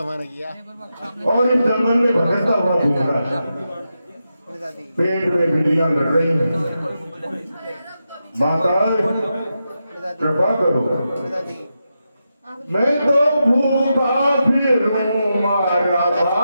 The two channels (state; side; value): inverted; both; correlation -0.88